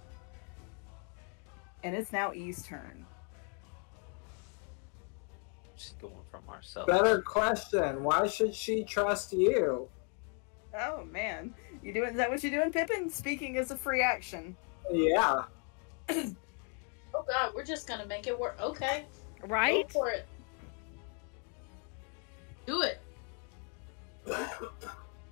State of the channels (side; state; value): right; quieter; 37.9 dB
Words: And it's now E's turn. she's going for Marcellus. Better question. Why should she trust you? Oh man, is that what you're doing, Pippin? Speaking as a free action. Yeah. Oh god, we're just gonna make it work. Okay. Right? Go for it. Do it.